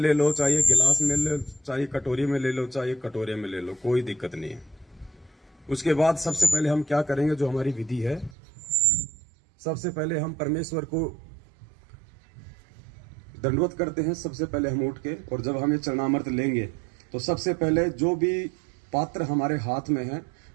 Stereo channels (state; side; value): drops out; left; at 8.3 s